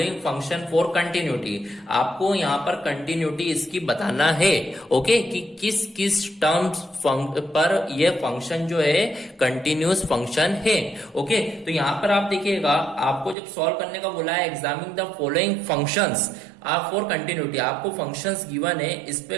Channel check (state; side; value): drops out; left; at 13.4 s